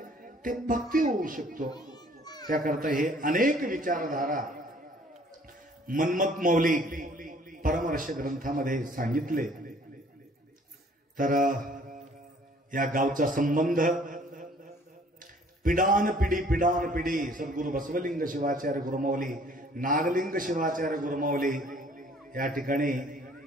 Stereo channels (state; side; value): normal; both; correlation 0.57